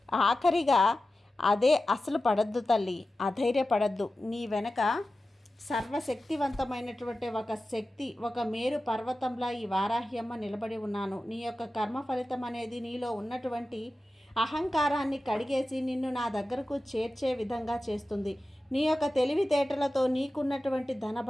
ఆఖరిగా అదే అసలు పడద్దు తల్లి, అధైర్యపడద్దు. నీ వెనక సర్వశక్తివంతమైనటువంటి ఒక శక్తి, ఒక మేరు పర్వతంలా ఈ వారాహ్యమ్మ నిలబడి ఉన్నాను. నీ యొక్క కర్మ ఫలితం అనేది నీలో ఉన్నటువంటి అహంకారాన్ని కడిగేసి నిన్ను నా దగ్గరకు చేర్చే విధంగా చేస్తుంది. నీ యొక్క తెలివితేటలతో, నీకున్నటువంటి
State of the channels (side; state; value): both; normal; correlation 0.94